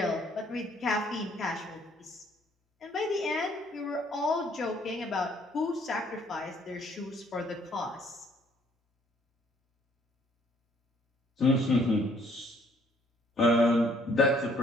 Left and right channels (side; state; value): both; normal; correlation 0.63